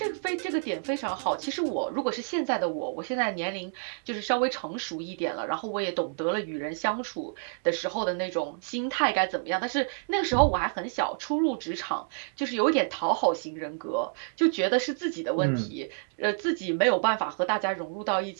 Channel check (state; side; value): silent; left; digital silence